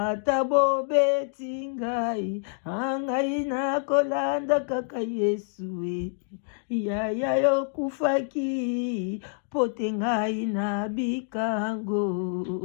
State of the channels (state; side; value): silent; right; digital silence